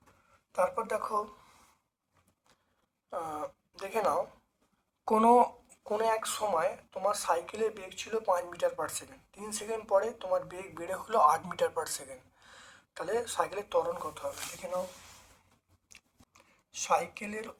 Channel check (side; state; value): both; identical; correlation 1.00